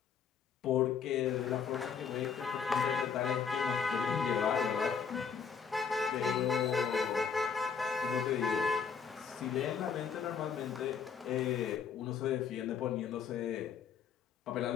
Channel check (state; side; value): quieter; right; 6.7 dB